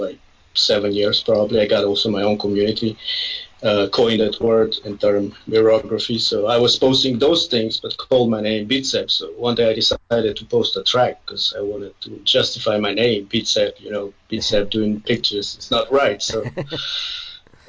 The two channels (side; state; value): both; identical; correlation 1.00